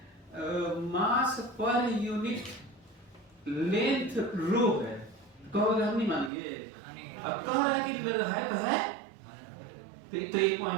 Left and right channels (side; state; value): left; drops out; at 6.3 s